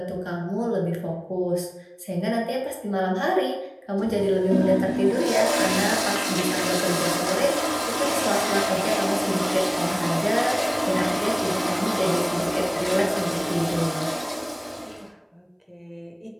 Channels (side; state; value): both; identical; correlation 1.00